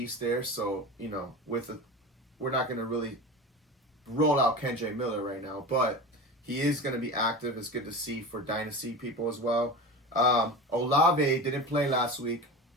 there, so, we're not going to really roll out Kendre Miller right now, but he is going to be active. It's good to see for dynasty people as well. Olave didn't play last week.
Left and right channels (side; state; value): both; normal; correlation 0.29